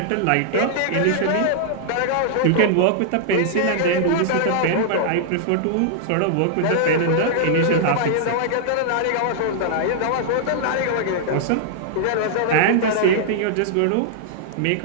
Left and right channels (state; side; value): different; both; correlation -0.01